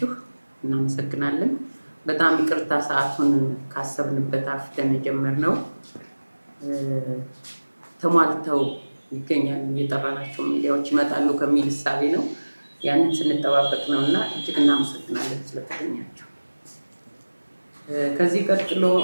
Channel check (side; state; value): both; inverted; correlation -1.00